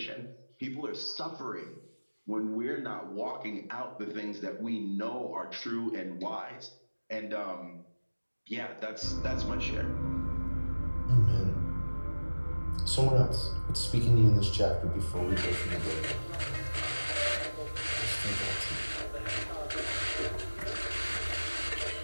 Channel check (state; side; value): inverted; both; correlation -1.00